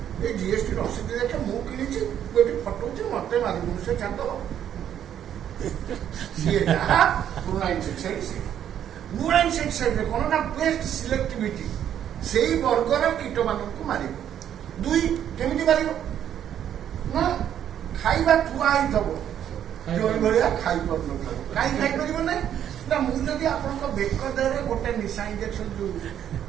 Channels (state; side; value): quieter; left; 10.0 dB